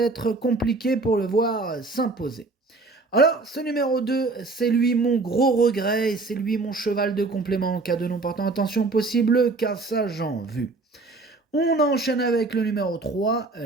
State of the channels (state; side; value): quieter; left; 3.5 dB